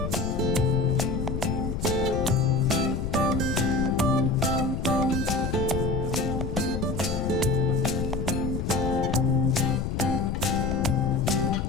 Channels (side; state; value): left; noise; rumble, 3 dB below the sound